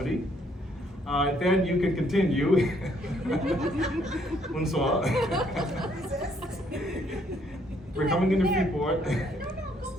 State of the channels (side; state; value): both; normal; correlation 0.67